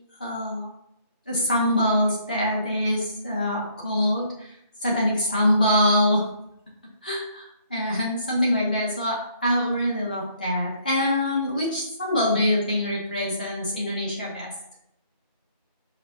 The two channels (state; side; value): inverted; both; correlation -0.64